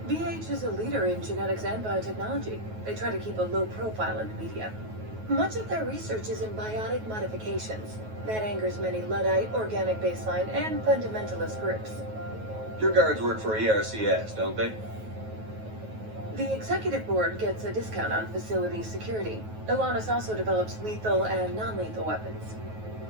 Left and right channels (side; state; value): left; late; 9.3 ms